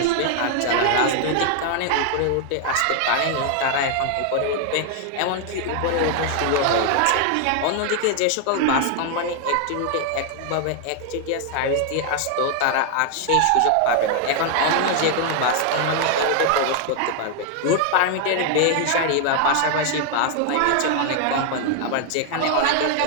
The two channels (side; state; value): both; different; correlation 0.00